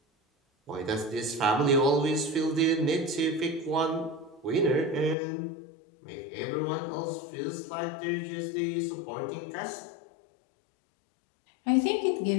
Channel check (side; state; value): right; drops out; at 5.2 s